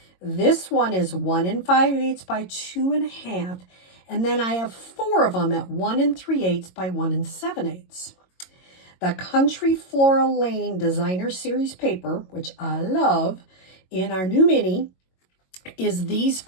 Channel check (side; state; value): right; late; 22 ms